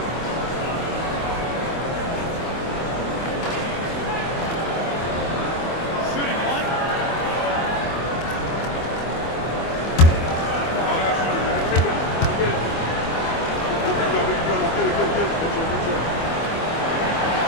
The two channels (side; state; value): right; late; 24 ms